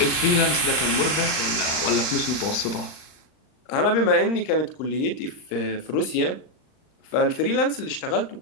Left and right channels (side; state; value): right; late; 39 ms